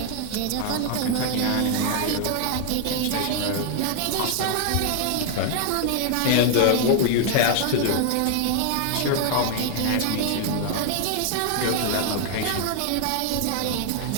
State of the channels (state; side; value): different; both; correlation 0.00